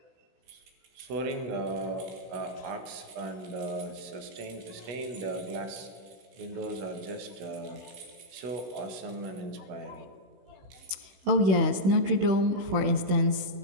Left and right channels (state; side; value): late; left; 16 ms